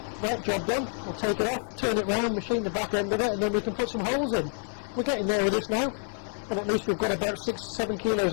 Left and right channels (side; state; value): right; silent; 59 dB below the other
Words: Right, job done. We'll take it off, turn it round, machine the back end of it, and then we can put some holes in. We're getting there with this now, and at least we've got about 6-7 kilos